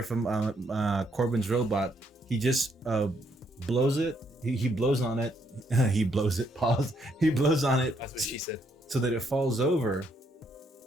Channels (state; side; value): normal; both; correlation 0.72